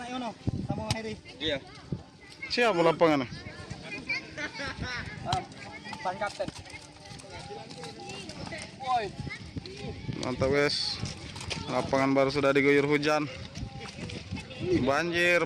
Yono sama Heri. Iya. siapa lapangan? Ban kapten. Mantap guys. Lapangan baru sudah diguyur hujan. Banjir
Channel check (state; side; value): identical; both; correlation 1.00